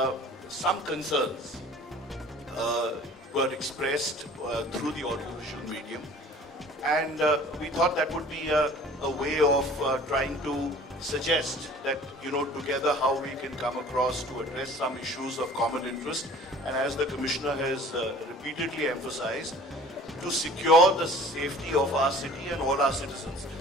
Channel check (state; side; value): normal; both; correlation 0.48